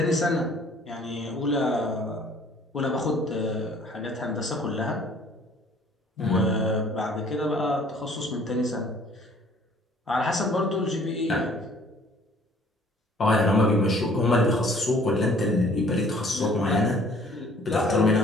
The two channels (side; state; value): both; normal; correlation 0.56